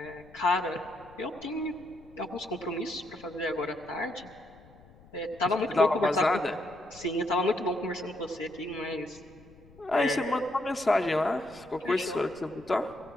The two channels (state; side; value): noise; left; rumble, 24 dB below the sound